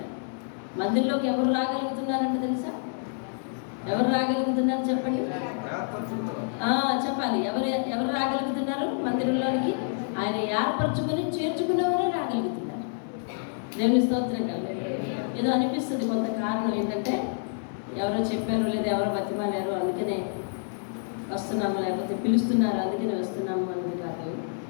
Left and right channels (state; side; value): silent; right; digital silence